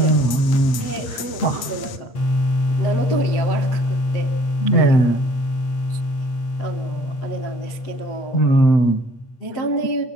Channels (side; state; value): right; late; 8.4 ms